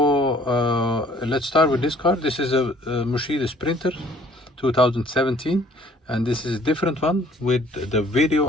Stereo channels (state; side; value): normal; both; correlation 0.57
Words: Let's start with this car. This is a Mercedes Sprinter 2017, and this is a different one with the video